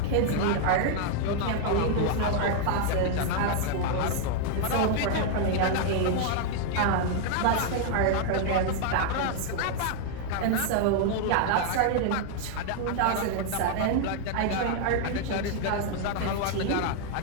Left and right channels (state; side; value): different; both; correlation 0.00